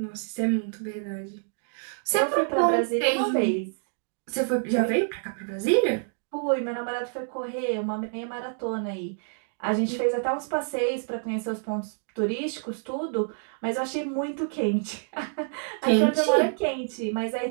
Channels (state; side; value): silent; left; digital silence